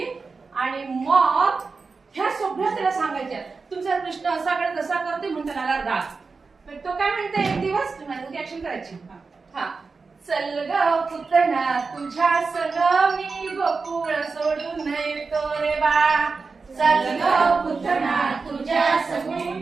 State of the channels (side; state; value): left; quieter; 4.4 dB